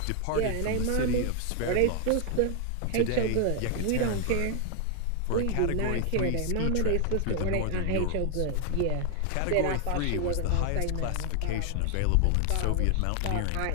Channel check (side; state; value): both; different; correlation 0.00